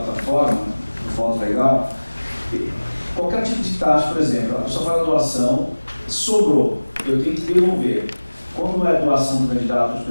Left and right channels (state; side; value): inverted; both; correlation -1.00